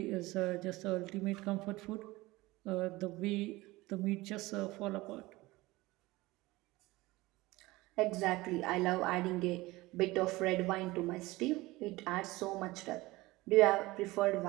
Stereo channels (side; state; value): left; quieter; 20.2 dB